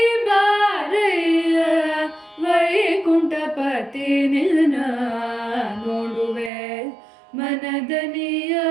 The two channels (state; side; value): drops out; left; at 6.5 s